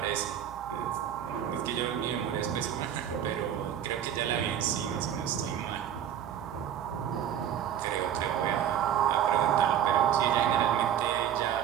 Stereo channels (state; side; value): quieter; left; 9.8 dB